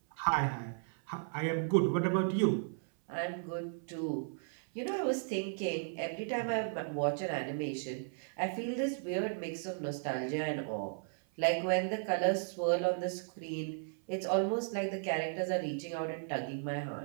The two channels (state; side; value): silent; left; 54 dB below the other